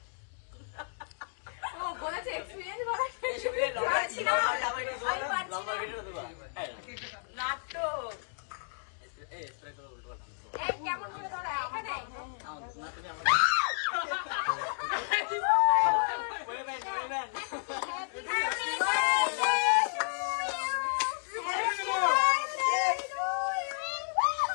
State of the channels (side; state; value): right; silent; digital silence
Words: ও বলেছে এক্সপেরিয়েন্স বলা নাটক। কেমন করে ধরা এখানে